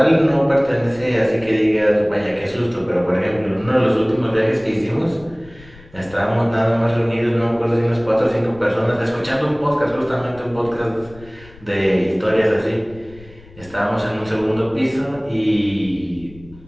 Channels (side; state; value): left; noise; rumble, 22 dB below the sound